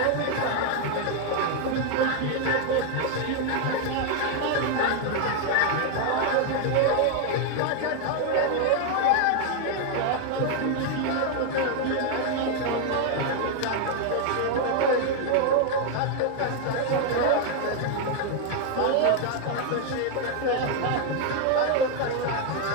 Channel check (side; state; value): both; different; correlation 0.01